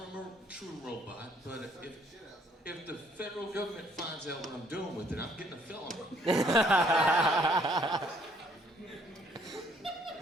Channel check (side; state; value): both; normal; correlation 0.64